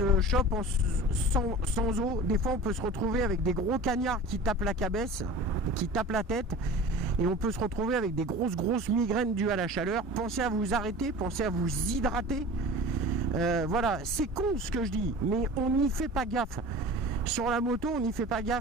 chope sans eau. Des fois on peut se retrouver avec des gros cagnards qui tapent la cabesse, qui tapent la tête. Et on peut se retrouver avec des grosses migraines dues à la chaleur. Pensez à vous arrêter, pensez à vous hydrater. Voilà, c'est con ce que je dis, mais on n'y fait pas gaffe. Sur la moto, on n'y fait pas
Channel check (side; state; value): both; normal; correlation 0.38